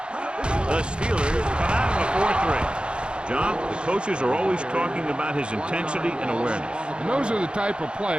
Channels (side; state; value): left; late; 0.054 ms